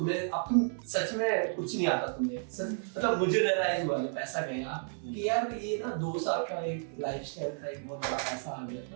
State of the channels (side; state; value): left; silent; 56 dB below the other